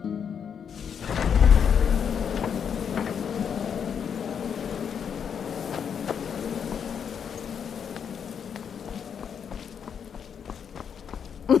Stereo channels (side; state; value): right; quieter; 7.5 dB